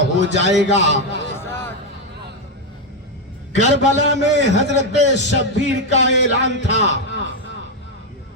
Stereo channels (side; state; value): both; normal; correlation 0.05